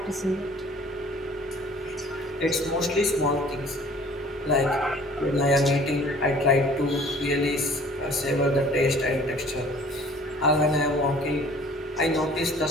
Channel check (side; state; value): both; normal; correlation 0.51